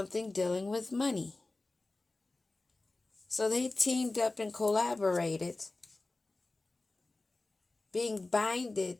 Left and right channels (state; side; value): quieter; right; 3.1 dB